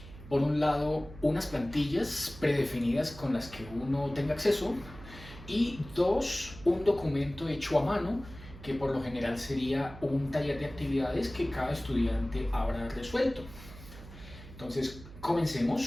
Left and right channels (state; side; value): noise; right; hum, 16 dB below the sound